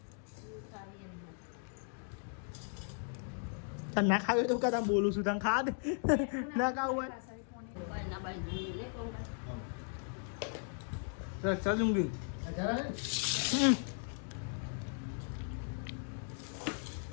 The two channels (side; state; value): right; silent; 53 dB below the other